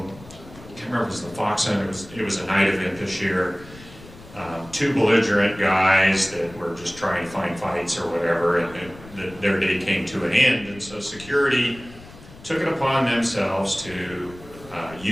I can't remember if it was the Fox Center, it was a night event this year. Two belligerent guys that were just trying to find fights or whatever, and their day came to an end. And so security took it upon themselves to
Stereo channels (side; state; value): left; noise; rumble, 19 dB below the sound